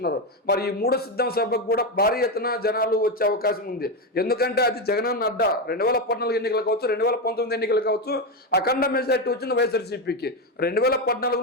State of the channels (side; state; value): both; normal; correlation 0.11